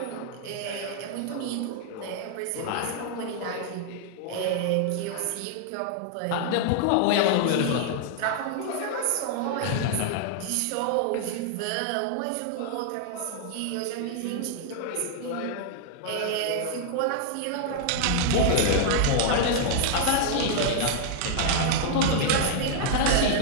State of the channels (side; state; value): both; different; correlation -0.01